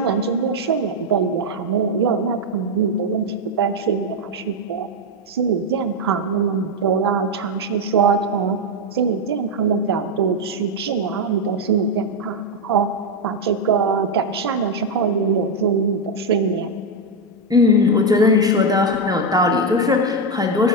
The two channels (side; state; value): both; normal; correlation 0.04